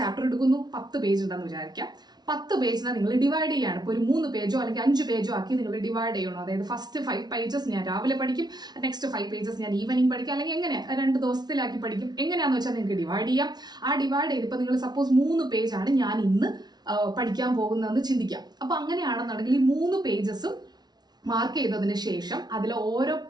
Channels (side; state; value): left; late; 0.19 ms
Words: എടുക്കുന്നു, 10 പേജ് ഉണ്ടെന്ന് വിചാരിക്കാം. 10 പേജിനെ നിങ്ങൾ ഡിവൈഡ് ചെയ്യാണ്. ഇപ്പോൾ ഒരു 3 പേജോ അല്ലെങ്കിൽ 5 പേജോ ആക്കി നിങ്ങൾ ഡിവൈഡ് ചെയ്യണം. അതായത് ഫസ്റ്റ് 5 പേജസ് ഞാൻ രാവിലെ പഠിക്കും, നെക്സ്റ്റ് 5 പേജസ് ഞാൻ ഈവനിങ് പഠിക്കും, അല്ലെങ്കിൽ എങ്ങനെ 2 ദിവസത്തിലാക്കി പഠിക്കും, എങ്ങനെയാണെന്ന് വെച്ചാൽ നിങ്ങൾക്ക് ഡിവൈഡ് ചെയ്യാം. ആ ഡിവൈഡ് ചെയ്തിപ്പോൾ നിങ്ങൾ സപ്പോസ് 3 പേജാണ് ഞാൻ ഇന്ന് പഠിക്കാൻ പോകുന്നതെന്ന് ചിന്തിക്കാം. അപ്പോൾ അങ്ങനെയാണെന്നുണ്ടെങ്കിൽ ഈ 3 പേജസും മാർക്ക് ചെയ്തതിന് ശേഷം അതിൽ ഓരോ